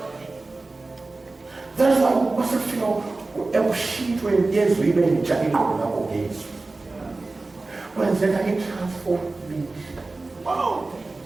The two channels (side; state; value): left; quieter; 3.4 dB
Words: That's why we must feel when yes, we may be chatting about games. When then I transform me. Wow.